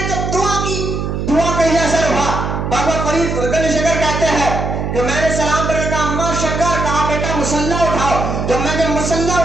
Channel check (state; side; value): noise; right; hum, 2 dB below the sound